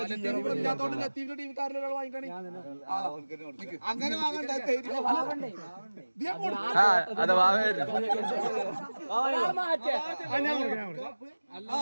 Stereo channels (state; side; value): inverted; both; correlation -1.00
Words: അങ്ങനെ അതെ വാവേര്